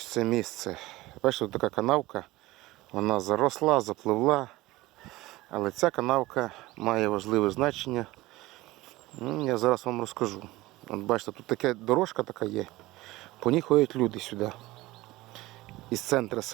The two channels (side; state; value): left; quieter; 19.0 dB